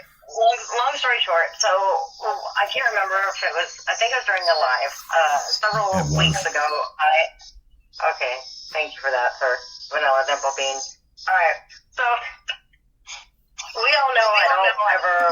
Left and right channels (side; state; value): both; identical; correlation 1.00